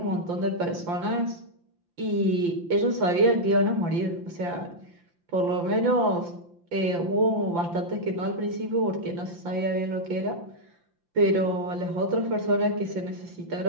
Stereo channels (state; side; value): late; left; 5.8 ms